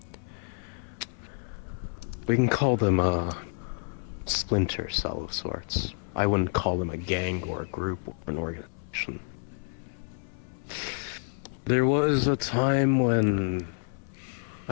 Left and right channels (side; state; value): right; silent; 59 dB below the other